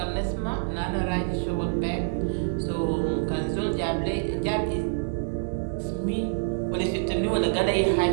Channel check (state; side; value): silent; left; 60 dB below the other